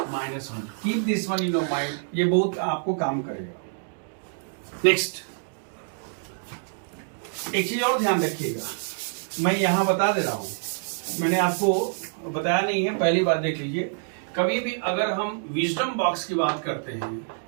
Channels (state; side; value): silent; left; digital silence